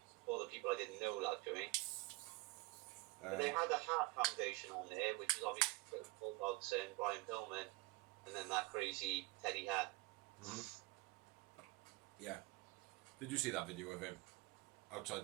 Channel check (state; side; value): quieter; left; 23.2 dB